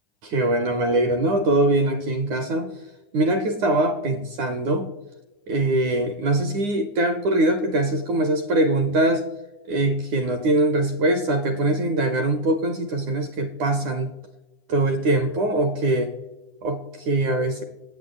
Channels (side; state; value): left; late; 9.8 ms